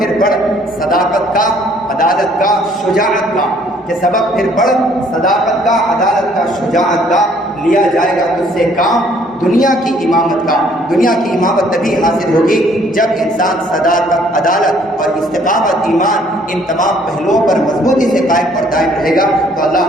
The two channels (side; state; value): both; normal; correlation 0.61